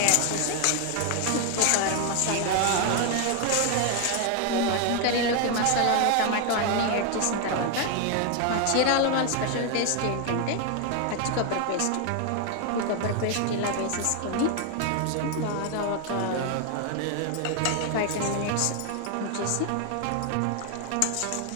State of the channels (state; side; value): different; both; correlation 0.00